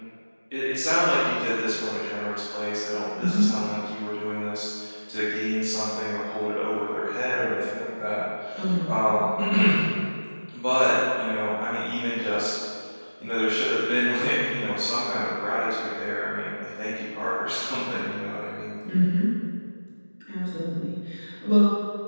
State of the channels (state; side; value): inverted; both; correlation -1.00